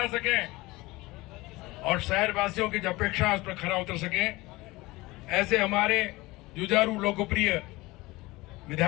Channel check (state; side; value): quieter; right; 20.9 dB